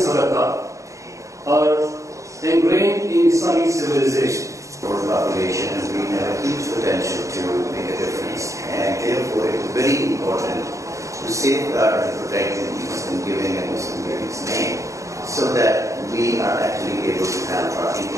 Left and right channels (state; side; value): late; left; 0.15 ms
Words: are ingrained in Islamic civilization. For the population, and we have a huge potential to make a difference, and therefore it is very important to safeguard and protect the Muslim giving and Muslim giving's name, so that we are actually able to help our